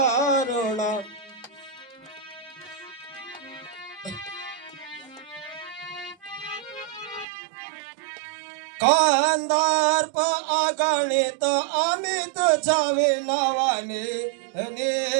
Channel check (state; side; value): drops out; left; at 7.2 s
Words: कांदार्प अगणित अमित छावे नावाने